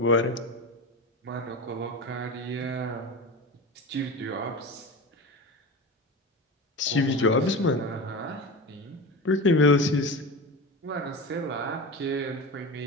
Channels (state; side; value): normal; both; correlation 0.27